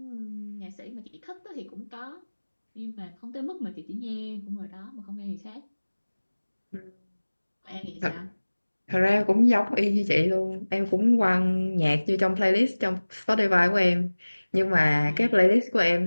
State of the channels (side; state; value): both; inverted; correlation -1.00